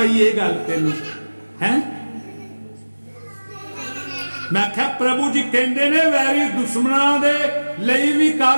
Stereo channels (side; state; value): both; inverted; correlation -1.00